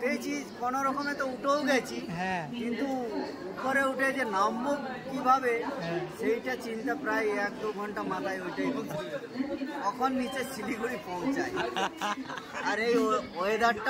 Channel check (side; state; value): both; identical; correlation 1.00